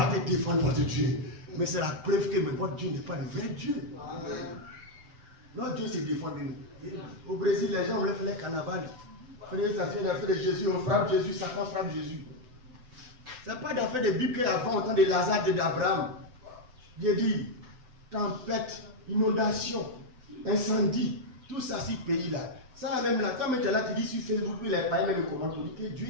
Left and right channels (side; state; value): left; late; 7.9 ms